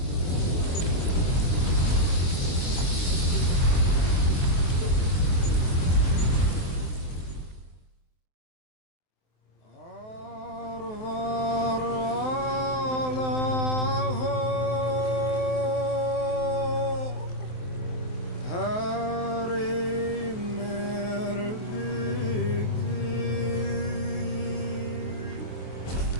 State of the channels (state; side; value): late; right; 23 ms